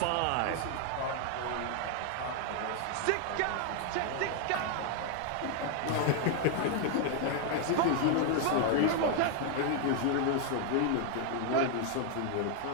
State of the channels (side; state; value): both; different; correlation 0.00